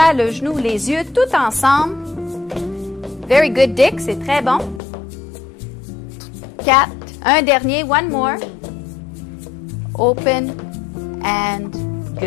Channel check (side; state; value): right; drops out; at 4.8 s